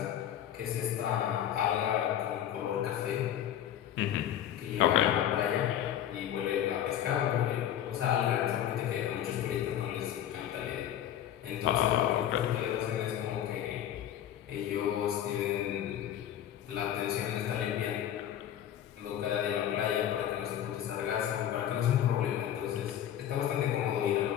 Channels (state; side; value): quieter; right; 10.8 dB